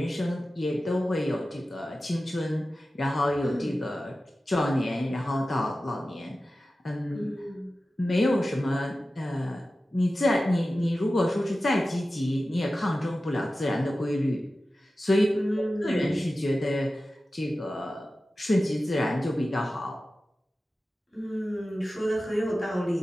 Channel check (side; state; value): both; normal; correlation 0.94